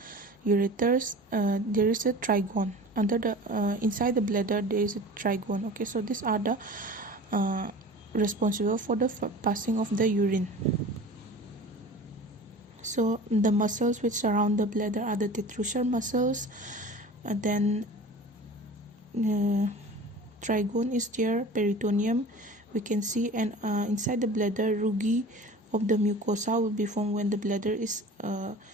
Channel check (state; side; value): normal; both; correlation 0.38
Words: Ureters, there is a trigone under the inside the bladder. There is a trigone. Okay, so these are the responsible for the passing of the urine. So the muscles which surround the bladder are the detrusor muscles. Then trigone is there, peritoneum we can see, and inside the bladder rugae of the mucosa will be formed when the bladder is